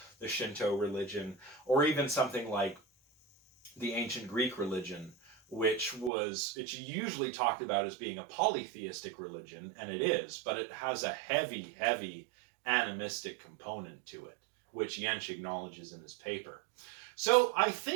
the Shinto religion, or even something like the ancient Greek religion, which it's usually talked about as being a polytheistic religion, and it is, but it has a heavy, heavy animistic component to it, which Jentsch acknowledges in his paper. So I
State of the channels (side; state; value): left; drops out; at 6.1 s